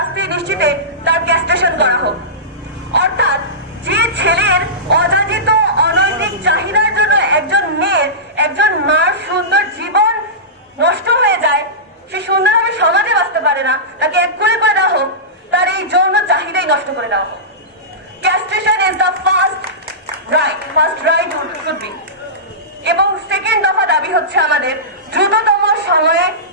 নিশ্চিতে তার ক্যাস্ট্রেশন করা হোক। অর্থাৎ যে ছেলের অযাচিত অনৈতিক চাহিদার জন্য একজন মেয়ের, একজন মার সুন্দর জীবন নষ্ট হয়ে যায়, সে সুন্দরভাবে সমাজে বাঁচতে পারে না, তাকে এক করে দেওয়া হোক, তার এই যৌন চাহিদাই নষ্ট করে দেওয়া হোক। Castration is the first right should be. এবং সেকেন্ড দফা দাবি হচ্ছে আমাদের দ্রুততম সময়ে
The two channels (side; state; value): both; normal; correlation -0.19